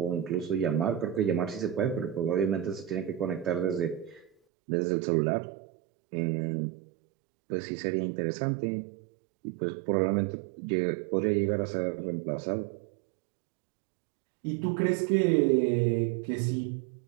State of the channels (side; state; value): left; drops out; at 4.3 s